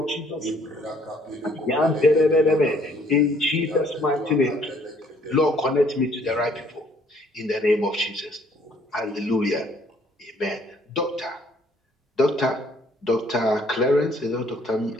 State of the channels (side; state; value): both; normal; correlation 0.62